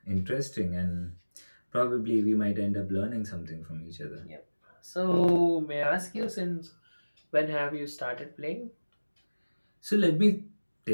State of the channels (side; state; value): both; inverted; correlation -1.00